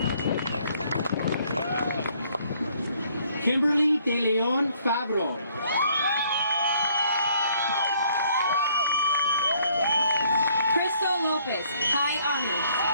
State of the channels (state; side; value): inverted; both; correlation -0.65